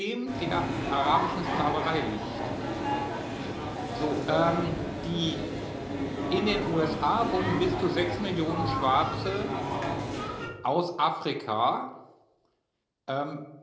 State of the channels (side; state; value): both; identical; correlation 1.00